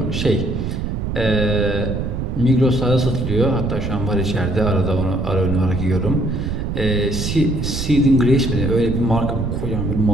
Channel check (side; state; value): right; noise; rumble, 3 dB below the sound